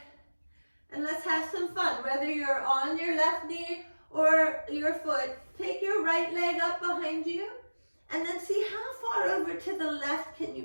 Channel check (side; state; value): both; inverted; correlation -1.00